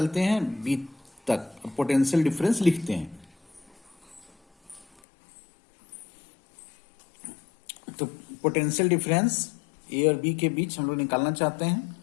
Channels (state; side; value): drops out; right; at 4.9 s